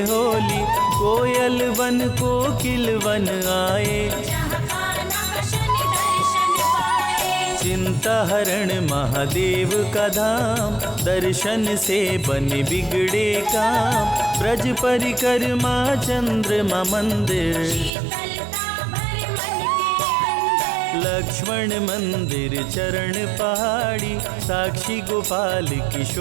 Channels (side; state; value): left; drops out; at 17.9 s